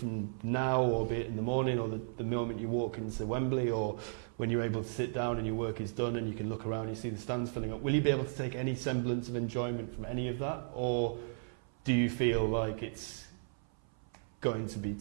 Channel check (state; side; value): silent; left; 54 dB below the other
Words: now, or be it in the morning, or the moment you walk into Wembley, or when you're able to sit down and your work is done and you can look around and you see the stands filling up. Will you be able to take any semblance of enjoyment from any of that, or do you feel like it's going to be